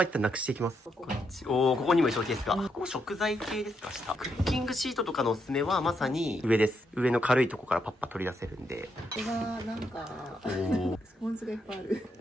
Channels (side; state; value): both; normal; correlation 0.79